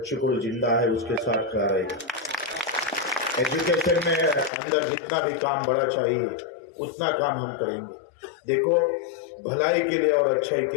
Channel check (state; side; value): drops out; right; at 4.5 s